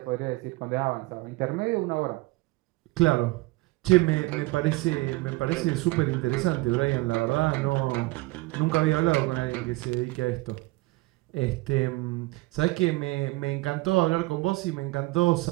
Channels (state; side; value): quieter; left; 21.7 dB